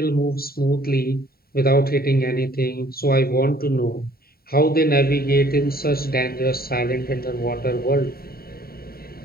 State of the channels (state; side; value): late; right; 0.44 ms